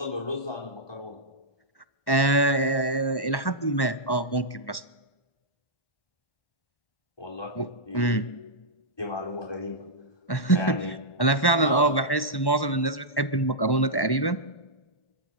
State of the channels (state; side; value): late; right; 1.1 ms